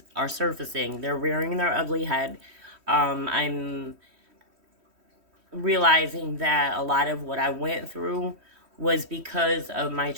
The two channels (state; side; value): late; left; 3.1 ms